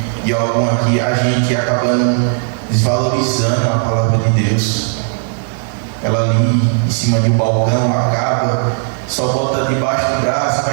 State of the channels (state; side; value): silent; left; digital silence